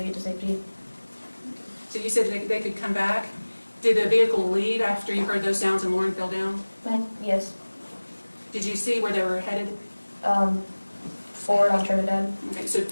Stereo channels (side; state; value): both; inverted; correlation -1.00